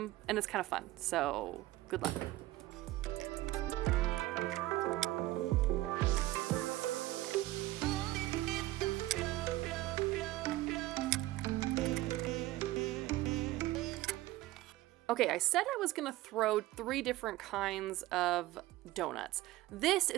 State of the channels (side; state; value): left; quieter; 17.0 dB